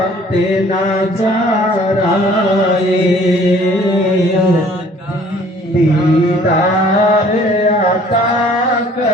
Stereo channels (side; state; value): both; normal; correlation 0.55